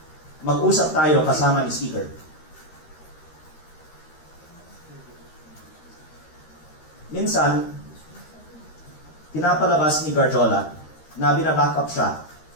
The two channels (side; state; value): right; late; 13 ms